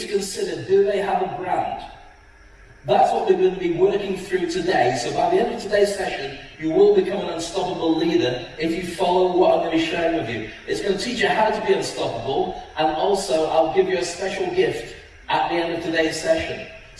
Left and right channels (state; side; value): identical; both; correlation 1.00